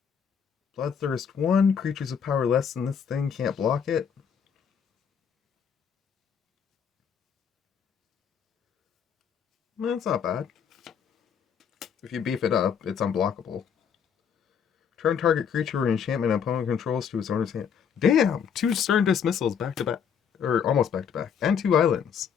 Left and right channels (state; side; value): quieter; right; 7.4 dB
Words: Bloodthirst 1. Creatures with power less than this thing can't block it. That's not bad. If you beef it up, it's unblockable. Turn target creature or enchantment opponent controls to its owner's hand. Damn! 2 Stern Dismissals back to back. Or almost back to back. And 2 islands.